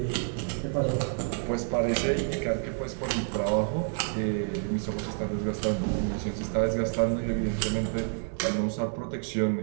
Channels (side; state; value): left; silent; 59 dB below the other